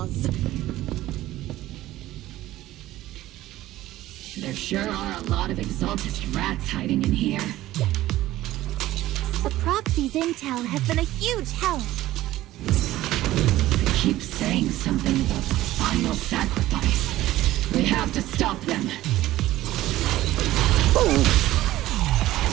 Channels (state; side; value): quieter; left; 15.5 dB